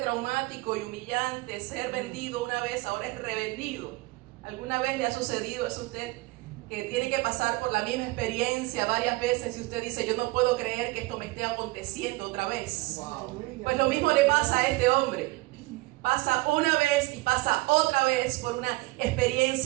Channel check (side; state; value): left; quieter; 22.3 dB